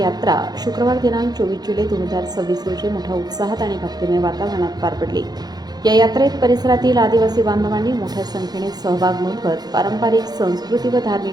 शुक्रवार दिनांक 24 जुलै 2026 रोजी मोठ्या उत्साहात आणि भक्तिमय वातावरणात पार पडली। या यात्रेत परिसरातील आदिवासी बांधवांनी मोठ्या संख्येने सहभाग नोंदवत पारंपरिक संस्कृती व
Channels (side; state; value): left; late; 0.19 ms